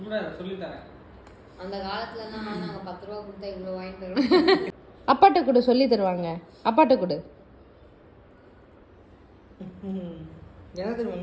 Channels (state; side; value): identical; both; correlation 1.00